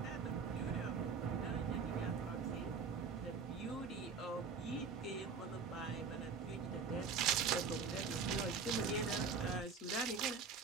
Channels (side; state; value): left; quieter; 5.3 dB